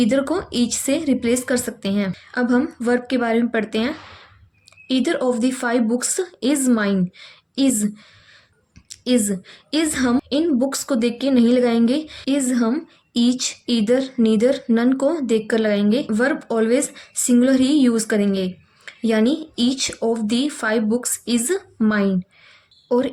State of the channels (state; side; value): identical; both; correlation 1.00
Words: को ईच से रिप्लेस कर सकते हैं। अब हम वर्ब के बारे में पढ़ते हैं। Either of the 5 books is mine. Is हम इन बुक्स को देख के नहीं लगाएंगे। इज हम ईच, ईदर, नीदर, नन को देख कर लगाएंगे। वर्ब ऑलवेज सिंगुलर ही यूज़ करेंगे, यानी each of the 5 books is mine. और